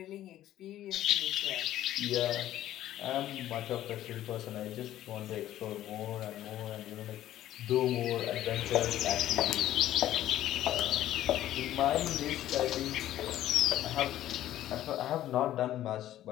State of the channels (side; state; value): right; quieter; 13.1 dB